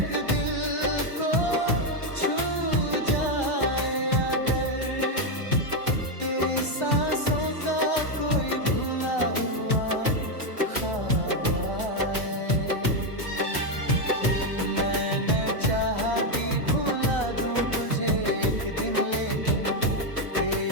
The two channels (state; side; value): late; right; 1.3 ms